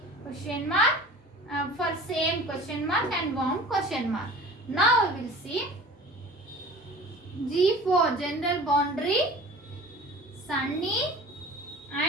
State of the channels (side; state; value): both; normal; correlation 0.42